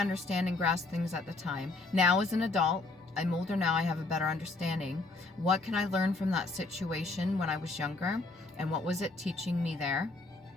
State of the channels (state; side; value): quieter; right; 3.3 dB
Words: and grasp things at the time? Now as an adult, I'm older now, I have a better understanding. What can I learn from that situation when I was younger? And what was it teaching me there?